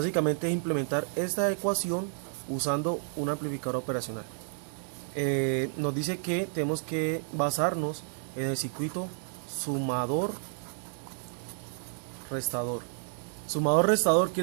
es implementar esta ecuación usando un amplificador operacional. Nos dice que tenemos que basarnos en el circuito sumador-restador. Sumador-restador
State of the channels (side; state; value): left; silent; 57 dB below the other